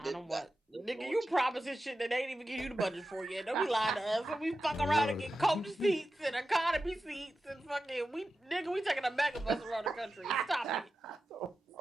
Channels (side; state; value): both; normal; correlation 0.92